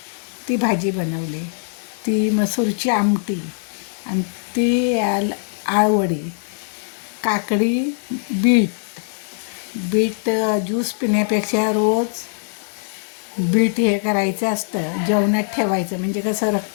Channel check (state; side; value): silent; right; 60 dB below the other